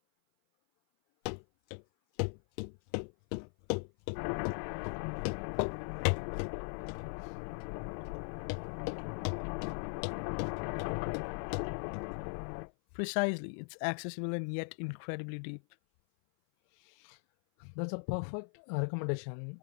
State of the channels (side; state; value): right; silent; 52 dB below the other